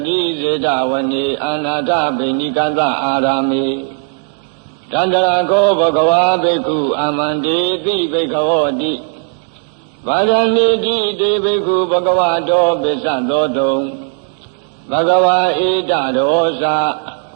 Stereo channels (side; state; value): left; silent; 56 dB below the other